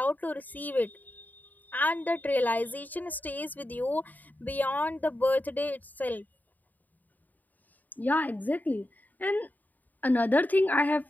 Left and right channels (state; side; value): late; right; 0.083 ms